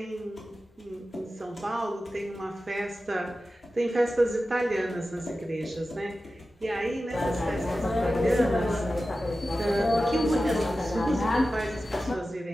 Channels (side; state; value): both; normal; correlation 0.94